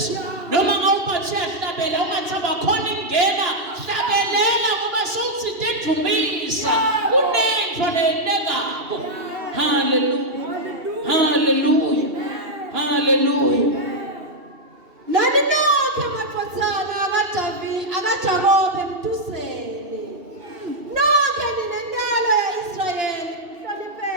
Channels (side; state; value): left; late; 2.7 ms